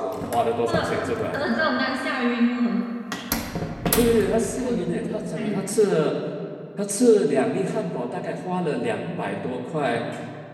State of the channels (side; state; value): both; identical; correlation 1.00